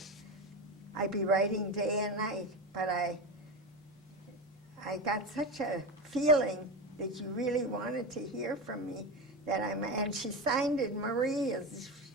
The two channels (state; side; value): normal; both; correlation 0.20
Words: I'd be writing day and night. But I got such a feeling that you really wanted to hear from me that and she signed it Marie, as